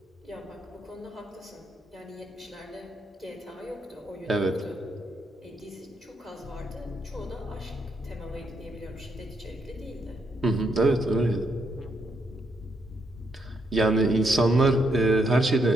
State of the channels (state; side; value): normal; both; correlation 0.77